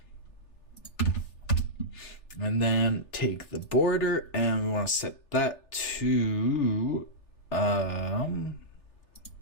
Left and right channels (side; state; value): right; late; 3.3 ms